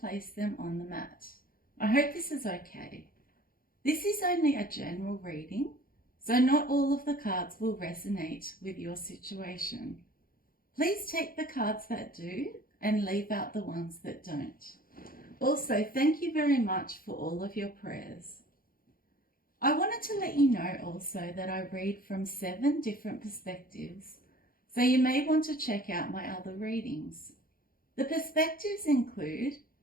them on the mat. I hope this is okay. This is only a general reading, so not all of the cards will resonate with your situation. Please take the cards that do and leave out the ones that don't. Also, thank you very much for all of your prayers. I wanted to let you know also that I read from 7 different perspectives, so you may want to check out my other readings. The perspectives include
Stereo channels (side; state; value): right; late; 0.42 ms